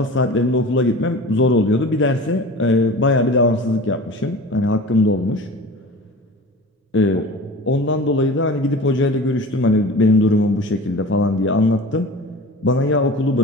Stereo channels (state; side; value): normal; both; correlation 0.37